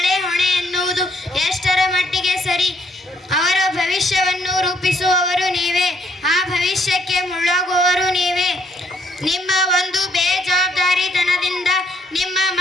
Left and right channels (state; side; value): normal; both; correlation 0.69